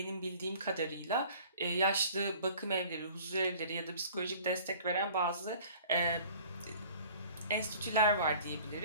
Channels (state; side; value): inverted; both; correlation -0.48